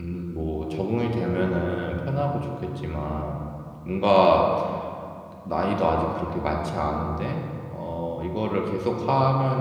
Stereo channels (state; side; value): identical; both; correlation 1.00